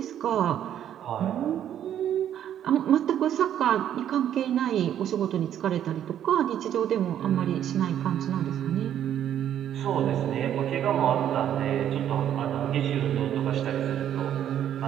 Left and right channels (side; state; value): left; quieter; 10.4 dB